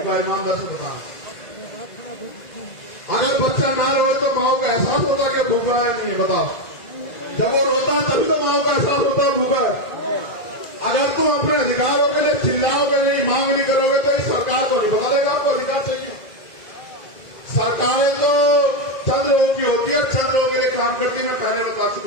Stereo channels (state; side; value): late; right; 1.9 ms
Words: है? ईमानदार से बताना। अगर बच्चा ना रोए तो माँ को एहसास होता कि भूखा है नहीं है? बताओ, जब वो रोता है तभी तो माँ को एहसास होता है भूखा है। अगर तुम अपने अधिकारों के लिए चिल्लाओगे नहीं, मांग नहीं करोगे तो इस सरकार को नहीं पता लगेगा आपको अधिकार चाहिए। सरकारें तो चंद लोगों की होती है, चंद लोगों के लिए काम करती, मैं पहले बता